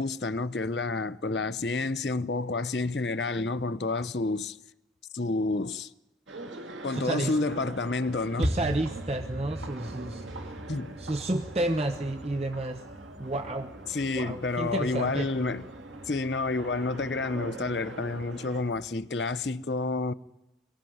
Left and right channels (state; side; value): normal; both; correlation 0.49